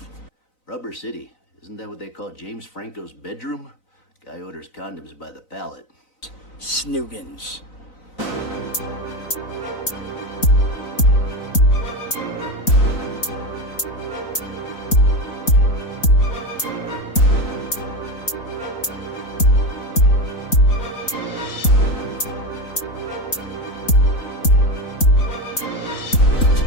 Rubber City. Isn't that what they call James Franco's bedroom? Guy orders condoms by the pallet. Snoogans.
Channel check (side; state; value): right; late; 3.9 ms